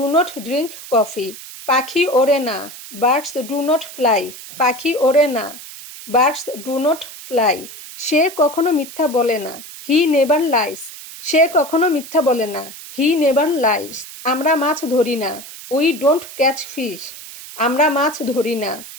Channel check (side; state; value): right; noise; hiss, 14 dB below the sound